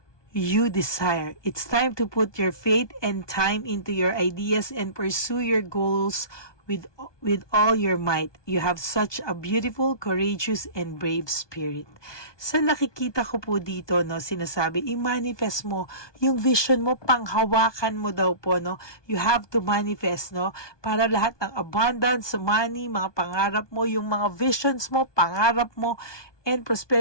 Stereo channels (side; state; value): right; late; 1.2 ms